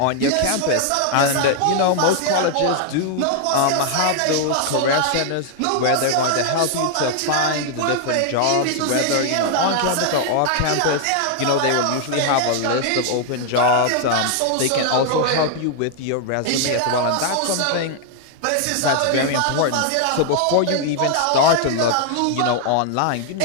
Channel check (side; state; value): both; different; correlation 0.00